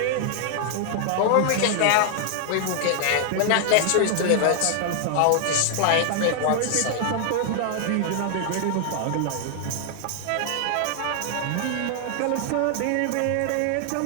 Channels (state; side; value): different; both; correlation 0.00